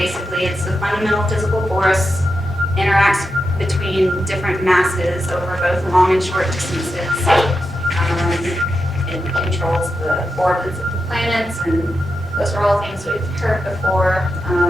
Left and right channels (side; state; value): both; normal; correlation 0.88